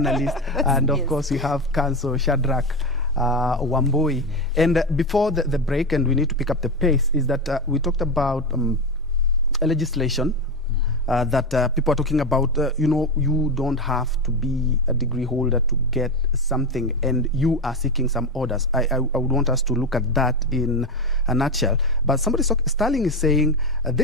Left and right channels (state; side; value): normal; both; correlation 0.16